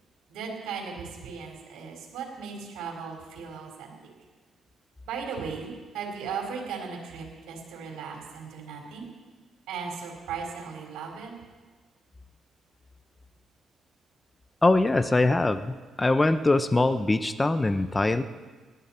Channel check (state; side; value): normal; both; correlation 0.92